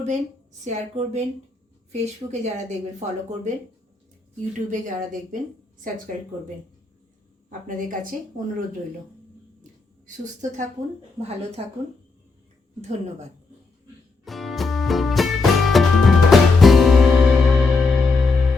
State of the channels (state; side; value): quieter; right; 3.9 dB